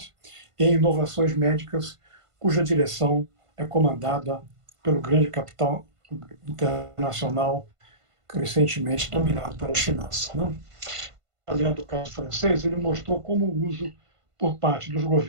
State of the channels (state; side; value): late; left; 1.5 ms